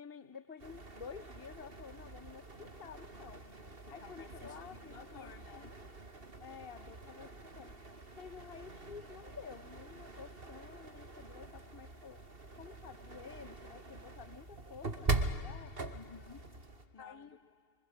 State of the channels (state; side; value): late; left; 2.7 ms